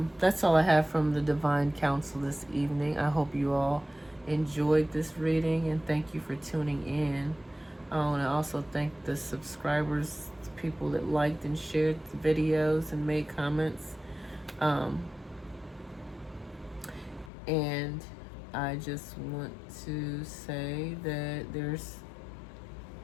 that's all I have from the Divine Council this evening. I hope you all enjoyed this reading, and thank you for tuning in. I want to also thank the subscribers, the people that liked and shared the videos and made comments. And I just want to say that there's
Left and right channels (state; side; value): drops out; right; at 17.3 s